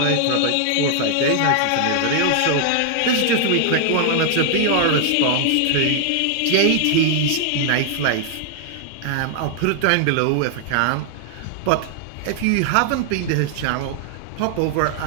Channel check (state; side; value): different; both; correlation 0.00